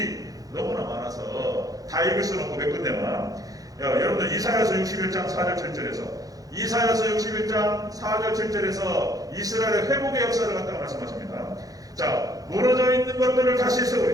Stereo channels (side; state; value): left; late; 0.17 ms